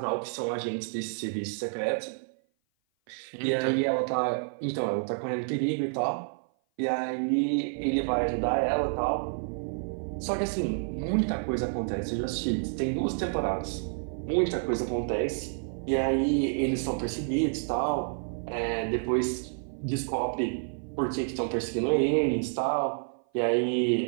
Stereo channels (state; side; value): silent; left; 56 dB below the other